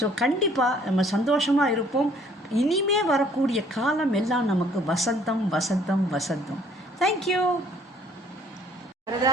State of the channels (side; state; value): both; normal; correlation 0.60